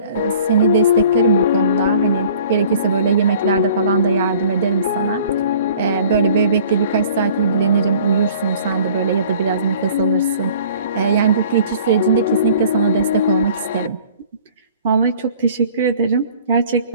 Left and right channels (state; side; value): inverted; both; correlation -0.50